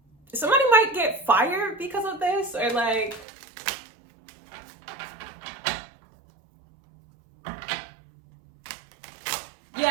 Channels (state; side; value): drops out; left; at 3.2 s